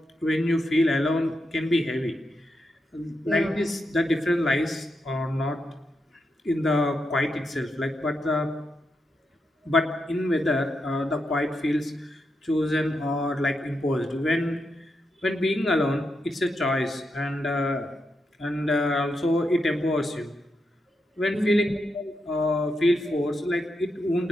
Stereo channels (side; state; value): both; normal; correlation 0.84